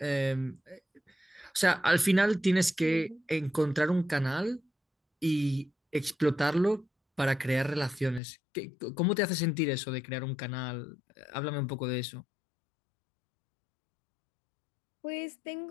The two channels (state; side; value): drops out; right; at 8.2 s